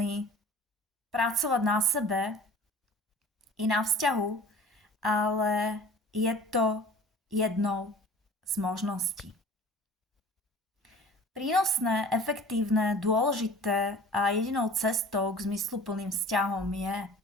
pracovať na sebe i na vzťahu, ale je to jednou z možností. Prínosné, efektívne, dôležité a jedinou cestou k zmysluplným vzťahom je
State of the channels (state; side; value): normal; both; correlation 0.43